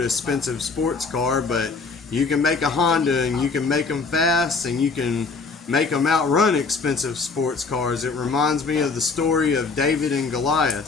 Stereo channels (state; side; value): quieter; right; 4.4 dB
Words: expensive sports car, but you can make a Honda and you can make them fast and you can make them outrun expensive sports cars. It reminds me of the story of David and